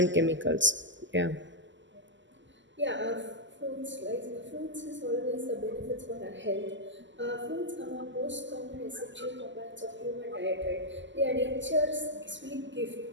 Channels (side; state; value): left; late; 0.54 ms